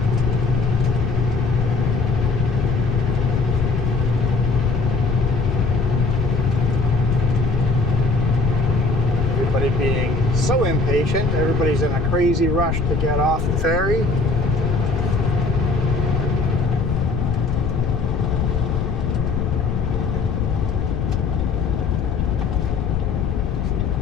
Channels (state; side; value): noise; left; rumble, 2 dB below the sound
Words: Everybody's in a crazy rush to get off the ferry.